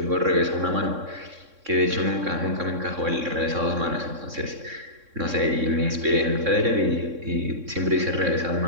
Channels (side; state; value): left; late; 3.6 ms